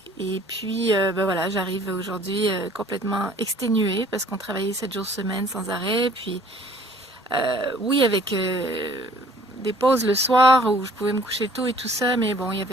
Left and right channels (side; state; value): both; normal; correlation 0.55